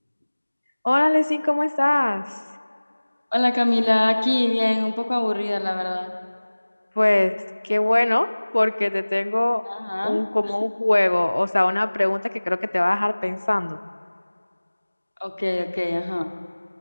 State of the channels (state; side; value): inverted; both; correlation -1.00